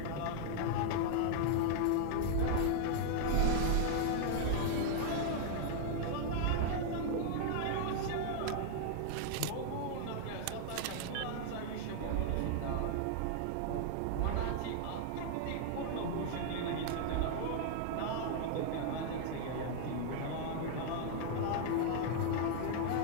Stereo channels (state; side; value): different; both; correlation -0.01